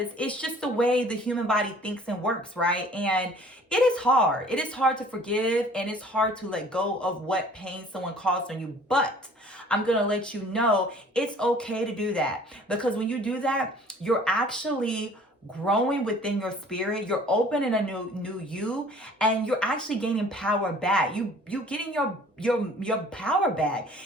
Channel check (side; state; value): both; normal; correlation 0.52